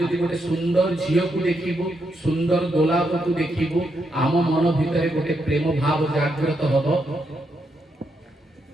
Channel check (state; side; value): normal; both; correlation 0.80